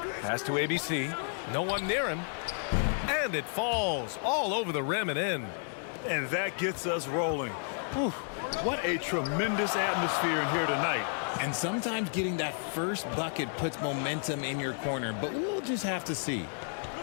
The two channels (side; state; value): right; silent; 57 dB below the other